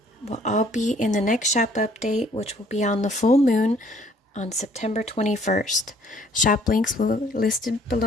will all be in the next shop update, which will be on the full moon on September 21st. Shop links will be listed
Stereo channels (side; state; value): both; normal; correlation 0.60